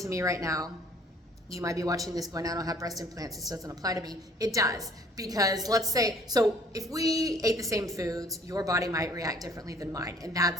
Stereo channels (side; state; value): both; normal; correlation 0.56